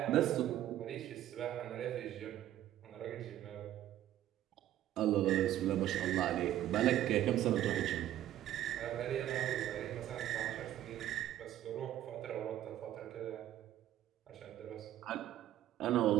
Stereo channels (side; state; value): left; quieter; 12.7 dB